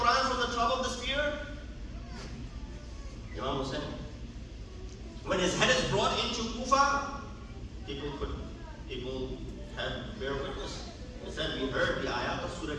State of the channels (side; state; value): both; identical; correlation 1.00